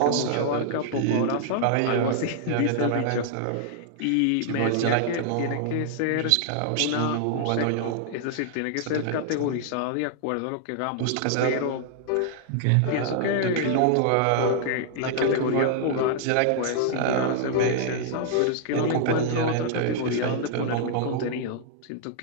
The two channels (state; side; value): different; both; correlation -0.01